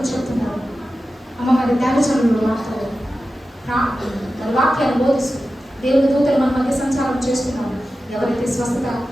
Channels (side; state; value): both; normal; correlation 0.93